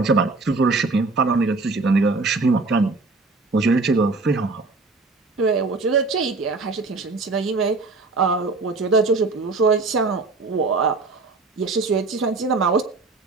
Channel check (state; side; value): quieter; left; 3.7 dB